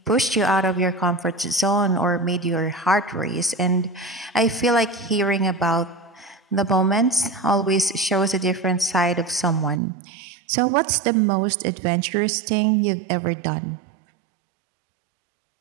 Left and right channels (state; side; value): drops out; left; at 9.8 s